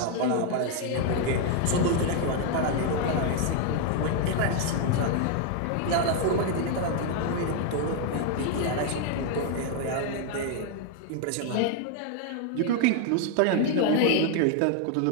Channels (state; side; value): different; both; correlation 0.01